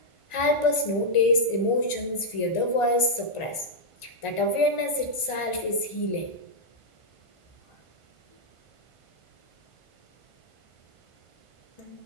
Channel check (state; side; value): late; right; 1.5 ms